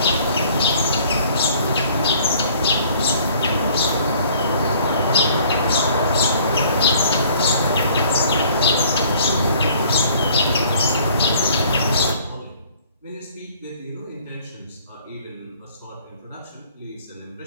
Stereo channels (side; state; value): both; inverted; correlation -0.57